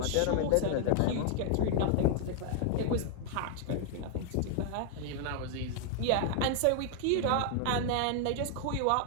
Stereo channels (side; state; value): both; different; correlation 0.00